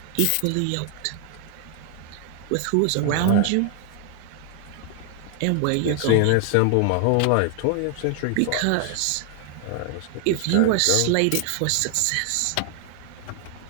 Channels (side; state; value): both; different; correlation 0.00